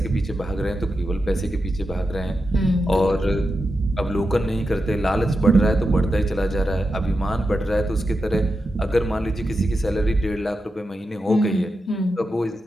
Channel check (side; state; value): both; normal; correlation 0.89